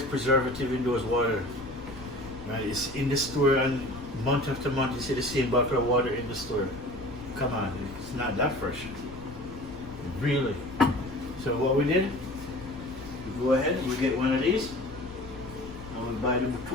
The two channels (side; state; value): left; noise; rumble, 15 dB below the sound